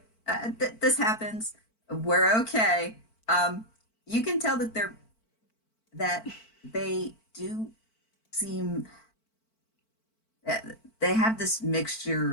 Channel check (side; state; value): right; late; 4.5 ms